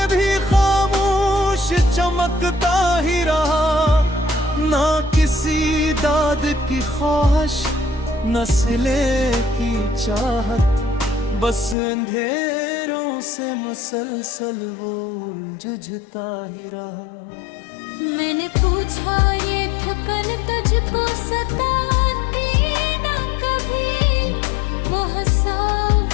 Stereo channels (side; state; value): right; drops out; at 11.8 s